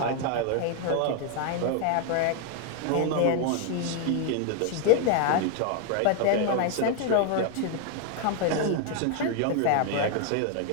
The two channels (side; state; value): both; different; correlation 0.00